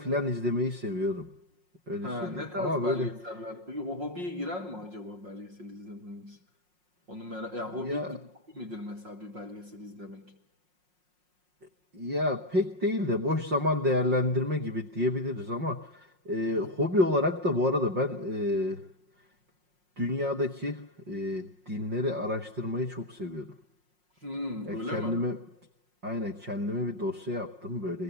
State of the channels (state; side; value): late; left; 5.5 ms